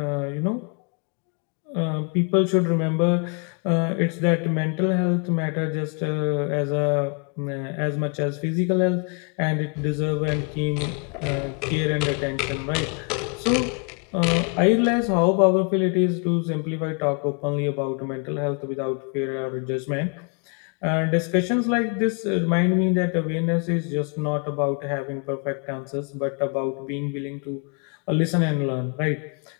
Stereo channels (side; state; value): right; quieter; 37.5 dB